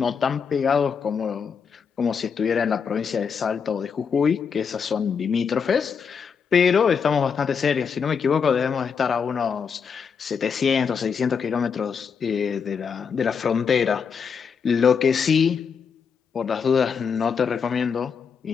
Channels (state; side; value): quieter; right; 6.3 dB